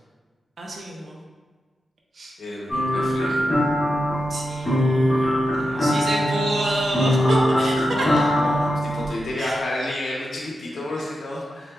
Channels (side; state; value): both; normal; correlation 0.89